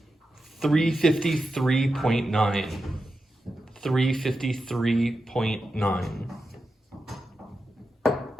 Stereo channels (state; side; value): normal; both; correlation 0.90